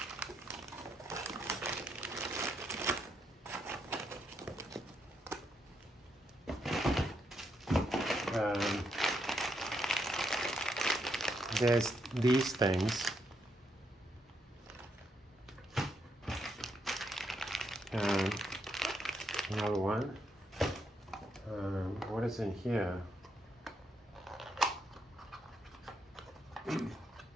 There's these things. Another one. What is in here?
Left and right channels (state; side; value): normal; both; correlation 0.78